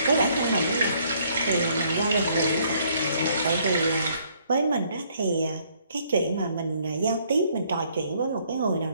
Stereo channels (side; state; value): both; inverted; correlation -0.66